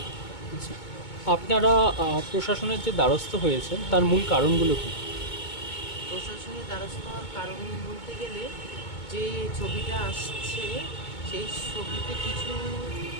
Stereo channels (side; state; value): right; late; 2.2 ms